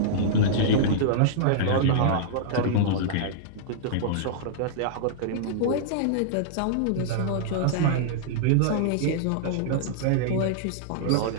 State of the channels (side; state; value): both; different; correlation -0.02